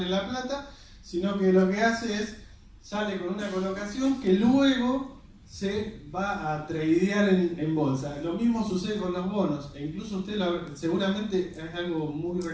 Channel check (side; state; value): both; identical; correlation 1.00